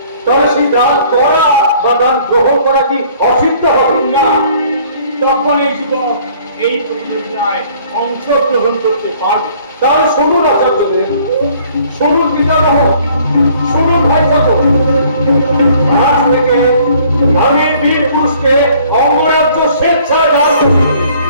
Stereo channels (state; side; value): inverted; both; correlation -0.57